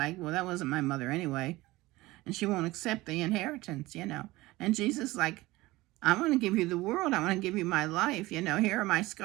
well, that wasn't my mother anyway, and she won't accept the inheritance, And Jesus, like, I want to give you the world. I want to give you my life. Here are my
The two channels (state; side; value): quieter; left; 19.4 dB